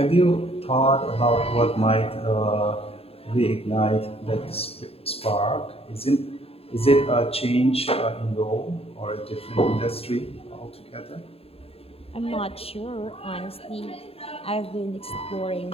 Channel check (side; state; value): right; late; 0.28 ms